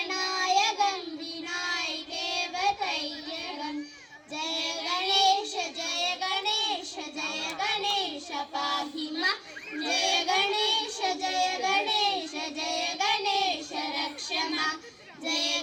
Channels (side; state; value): both; identical; correlation 1.00